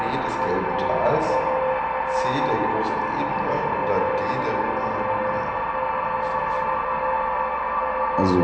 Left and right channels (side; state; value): both; identical; correlation 1.00